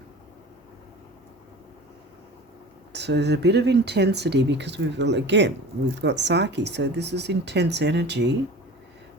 So there's a bit of intensity because we've got Psyche. So this is intense energy,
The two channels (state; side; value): normal; both; correlation 0.38